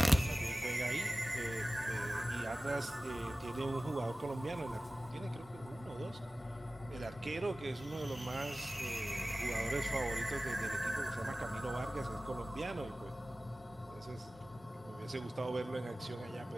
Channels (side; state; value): both; normal; correlation 0.96